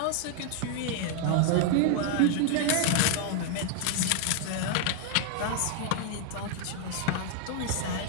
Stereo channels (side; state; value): both; different; correlation 0.00